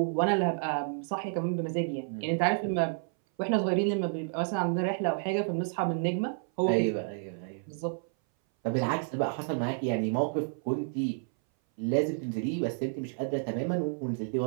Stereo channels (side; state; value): left; silent; 58 dB below the other